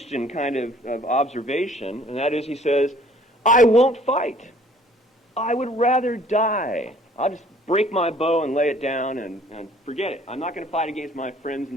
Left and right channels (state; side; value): normal; both; correlation 0.56